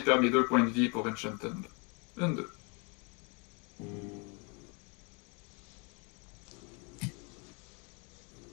faire mes 2 points de vie pour Enchanted. 1, 2.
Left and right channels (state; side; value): quieter; right; 31.7 dB